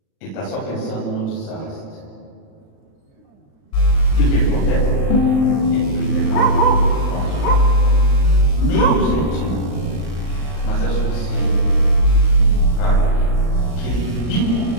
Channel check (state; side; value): late; right; 39 ms